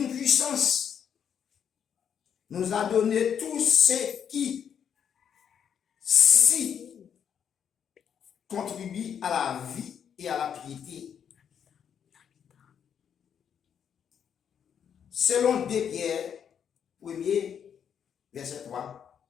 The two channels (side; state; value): right; quieter; 8.1 dB